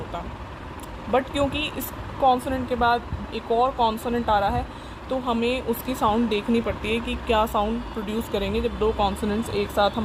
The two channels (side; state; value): both; identical; correlation 1.00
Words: बट क्योंकि इस कॉन्सोनेंट के बाद एक और कॉन्सोनेंट आ रहा है, तो हमें उसकी साउंड देखनी पड़ती है कि क्या साउंड प्रोड्यूस करेंगे जब दो कॉन्सोनेंट्स एक साथ